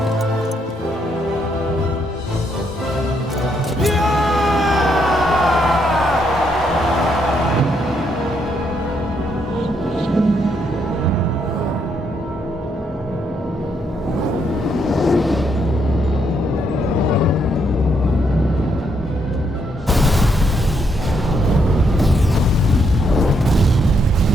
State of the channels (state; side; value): normal; both; correlation 0.75